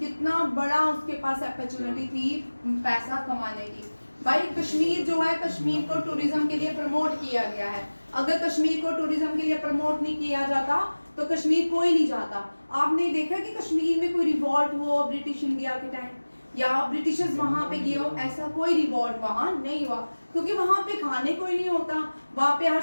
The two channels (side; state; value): both; inverted; correlation -1.00